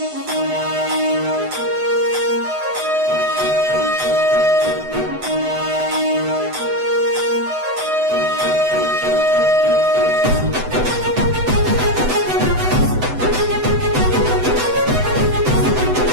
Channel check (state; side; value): late; left; 7.9 ms